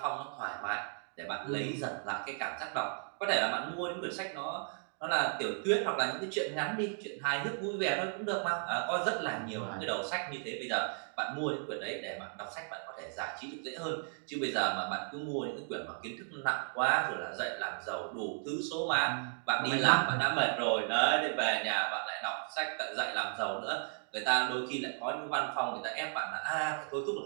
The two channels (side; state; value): left; silent; 54 dB below the other